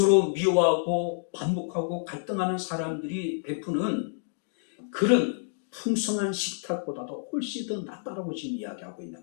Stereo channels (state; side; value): silent; right; digital silence